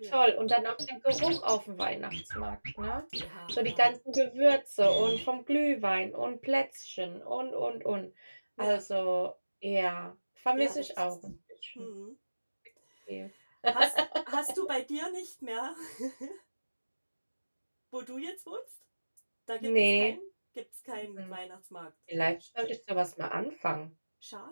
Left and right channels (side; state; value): both; inverted; correlation -1.00